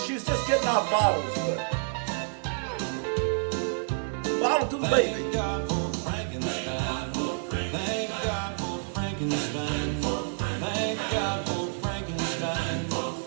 just getting off bottles, but bottle to the baby. Thank God for Frankenstein. Thank God for Frankenstein. Thank God for Frankenstein.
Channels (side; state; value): left; silent; digital silence